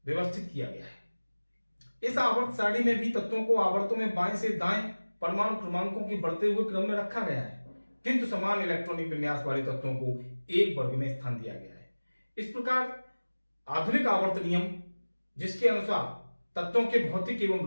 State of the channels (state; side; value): inverted; both; correlation -1.00